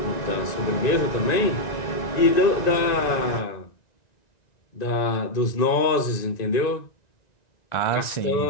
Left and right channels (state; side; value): late; right; 1.9 ms